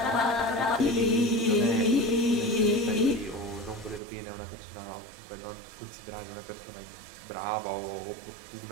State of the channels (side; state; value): left; drops out; at 4.0 s